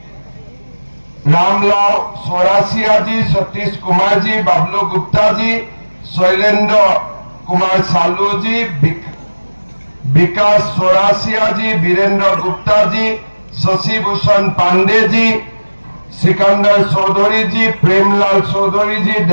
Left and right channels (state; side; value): inverted; both; correlation -1.00